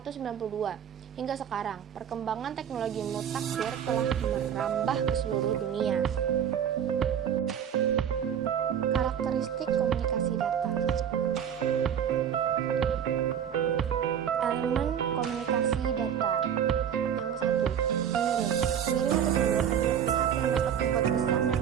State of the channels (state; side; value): quieter; left; 8.8 dB